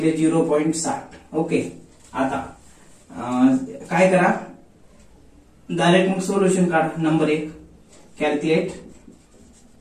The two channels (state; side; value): identical; both; correlation 1.00